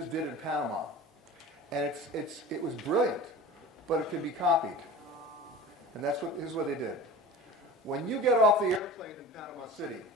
did in Panama. And it was brilliant, but it can be copied. And here's what they did. When you get off the airplane in Panama City,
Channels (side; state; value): both; normal; correlation 0.36